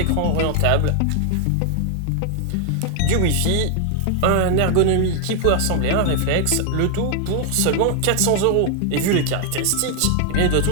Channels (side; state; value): both; different; correlation 0.00